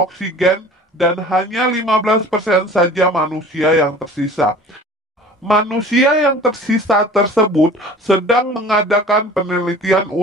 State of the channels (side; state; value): both; normal; correlation 0.44